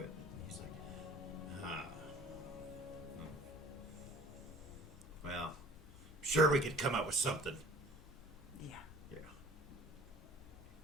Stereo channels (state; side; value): normal; both; correlation 0.49